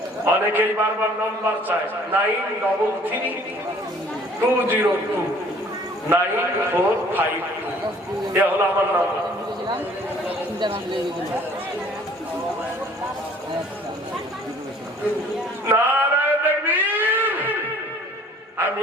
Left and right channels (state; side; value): normal; both; correlation 0.54